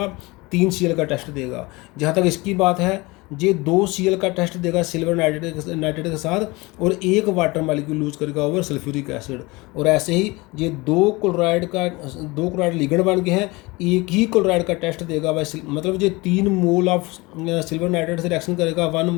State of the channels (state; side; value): quieter; right; 23.6 dB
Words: 3 Cl का टेस्ट देगा। जहाँ तक इसकी बात है, ये 2 Cl का टेस्ट देगा सिल्वर नाइट्रेट के साथ, और 1 वाटर मालिक्यूल लूज करेगा ओवर सल्फ्यूरिक एसिड। और ऐसे ही ये 2 क्लोराइड लिगेंड बन गए हैं, एक ही क्लोराइड का टेस्ट देगा भाई, मतलब ये 3 मोल ऑफ सिल्वर नाइट्रेट से रिएक्शन करेगा 1